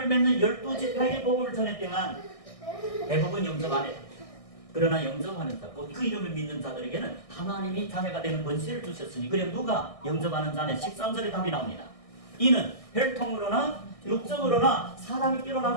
믿는 12지파에게 복음을 전했지만 대부분 영접 안 했다. 그러나 영접하는 자, 그 이름을 믿는 자들에게는 하나님이 자녀가 되는 권세를 주셨으니, 그럼 누가 영접하는 자는 13절에 답이 나옵니다. 이는 혈통으로나 육적으로나 사람이께로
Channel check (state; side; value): late; right; 1.6 ms